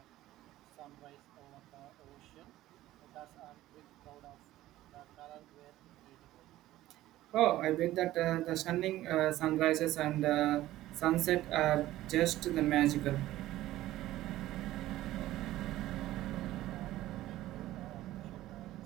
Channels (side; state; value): left; quieter; 15.3 dB